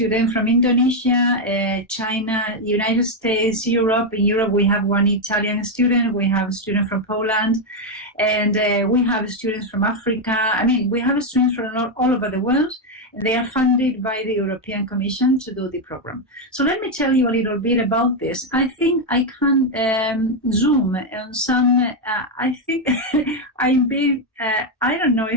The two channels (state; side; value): normal; both; correlation 0.03